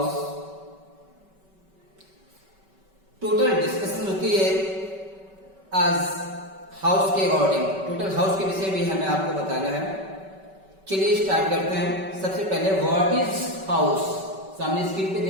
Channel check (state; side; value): late; left; 5.2 ms